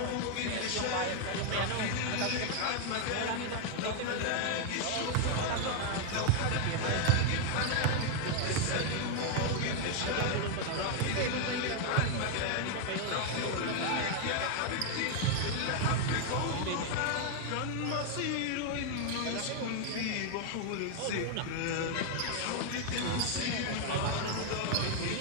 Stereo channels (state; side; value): different; both; correlation 0.00